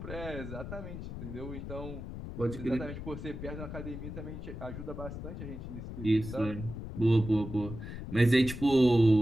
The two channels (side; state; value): left; noise; rumble, 9 dB below the sound